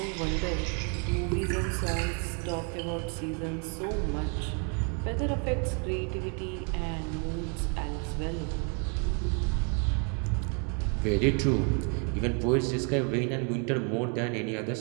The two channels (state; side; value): quieter; left; 37.7 dB